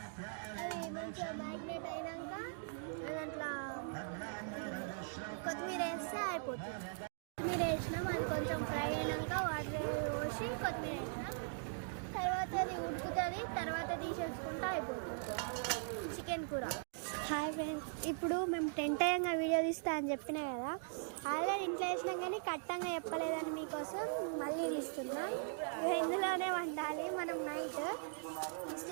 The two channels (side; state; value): left; silent; digital silence